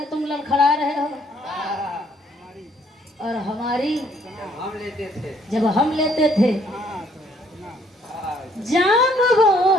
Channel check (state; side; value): normal; both; correlation 0.65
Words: तुम लड़खड़ा रहे हो और हमारी हम लेते थे जब हम लेते थे जाम वो